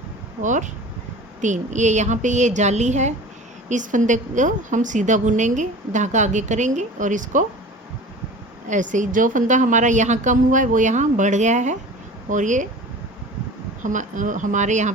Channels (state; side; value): normal; both; correlation 0.39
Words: और 3। ये यहाँ पे ये जाली है, इस फंदे को हम सीधा बुनेंगे, धागा आगे करेंगे और इसको ऐसे ही, जो फंदा हमारा यहाँ कम हुआ है वो यहाँ बढ़ गया है और ये हमारे यहाँ